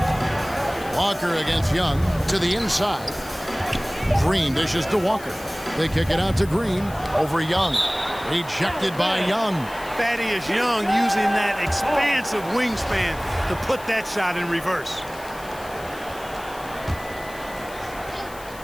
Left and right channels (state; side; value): noise; left; hiss, 19 dB below the sound